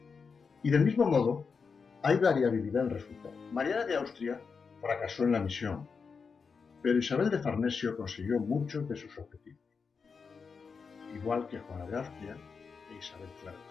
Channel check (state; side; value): quieter; right; 5.4 dB